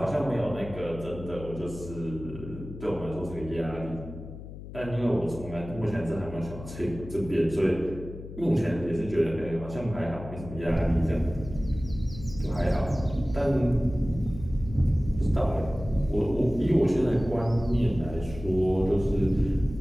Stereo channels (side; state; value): left; noise; hum, 12 dB below the sound